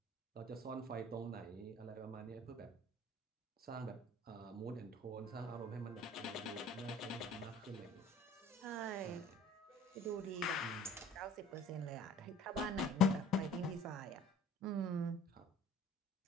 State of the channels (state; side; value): normal; both; correlation 0.49